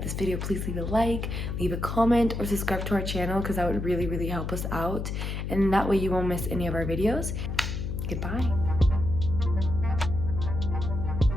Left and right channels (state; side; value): noise; left; hum, 4 dB below the sound